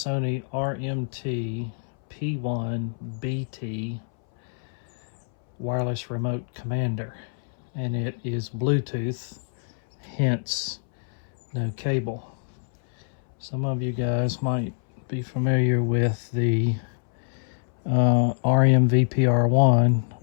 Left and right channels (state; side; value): silent; right; 61 dB below the other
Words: RMT-P1BT wireless remote commander, and it is Bluetooth, hence no cable. Some of you guys might be familiar with the RMVPR1,